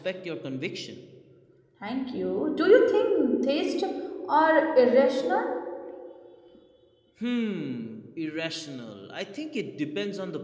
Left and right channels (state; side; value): identical; both; correlation 1.00